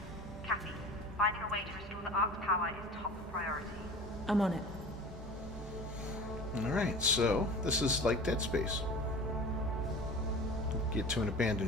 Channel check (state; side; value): normal; both; correlation 0.37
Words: Kathy, finding a way to restore the Ark's power is top priority. I'm on it. Alright, so this is like Dead Space. Get to an